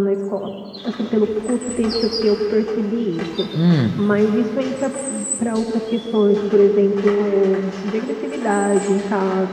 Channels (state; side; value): identical; both; correlation 1.00